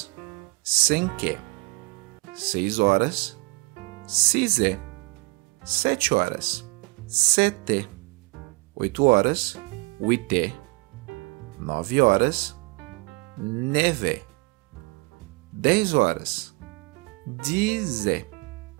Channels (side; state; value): left; quieter; 26.9 dB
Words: cinqué. 6 horas, sisé. 7 horas, seté. 8 horas, huité. 9 horas, nevé. 10 horas, dizé.